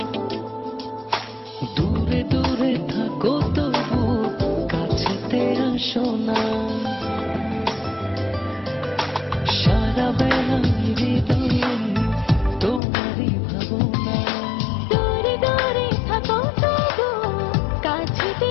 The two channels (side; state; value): right; drops out; at 12.8 s